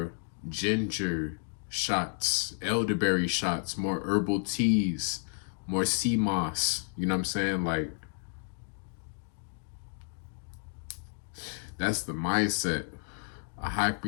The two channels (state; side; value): silent; right; 57 dB below the other